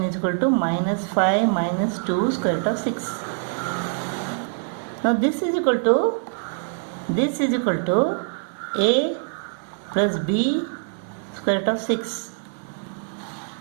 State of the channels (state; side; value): silent; left; 63 dB below the other